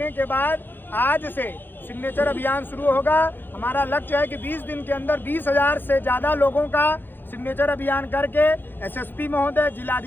के बाद आज से सिग्नेचर अभियान शुरू होगा। हमारा लक्ष्य है कि 20 दिन के अंदर 20,000 से ज़्यादा लोगों का सिग्नेचर अभियान करके एसएसपी महोदय,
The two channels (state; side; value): late; right; 0.097 ms